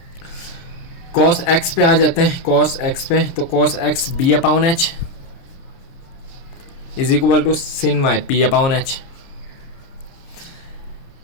cos x पे आ जाते हैं। cos x पे तो cos x b upon h is equal to sin y p upon h।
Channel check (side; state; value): right; late; 30 ms